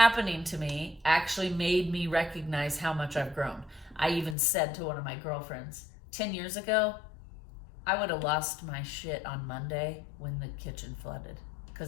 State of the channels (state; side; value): drops out; right; at 4.4 s